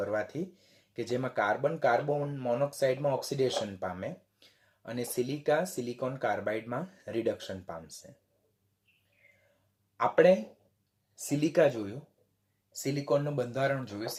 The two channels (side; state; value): both; identical; correlation 1.00